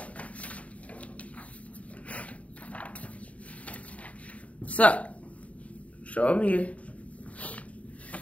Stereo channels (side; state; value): right; late; 0.067 ms